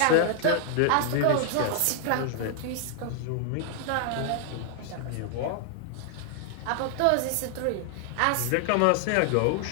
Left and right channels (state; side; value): different; both; correlation 0.00